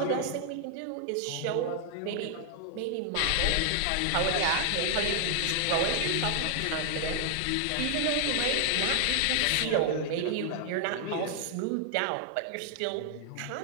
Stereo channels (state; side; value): different; both; correlation 0.00